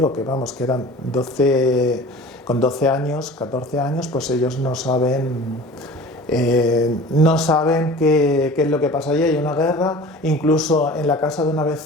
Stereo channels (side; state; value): both; normal; correlation 0.41